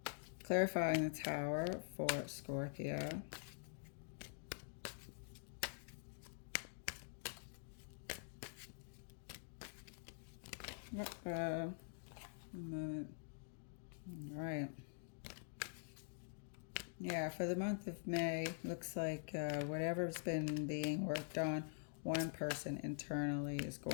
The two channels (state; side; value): silent; right; digital silence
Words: Clarifying the Tower for Scorpio. A moment. All right. Yeah, for the month of May, looks like whatever's been being worked on, one person internally is